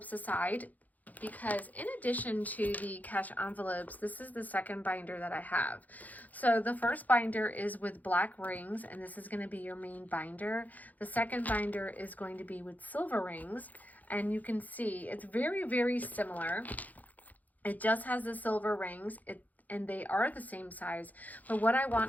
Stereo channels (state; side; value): late; right; 0.080 ms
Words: aside because in addition to the cash envelopes, this is the second binder that I have. So the first binder is with black rings, and this is going to be your main binder. The second binder is going to be with silver rings, and you can see it's very, very similar. It just has the silver rings. and they are the same size. But what I